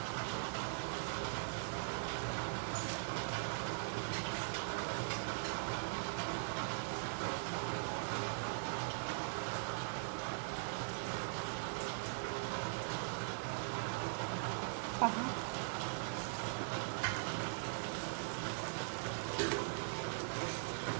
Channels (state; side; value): silent; left; digital silence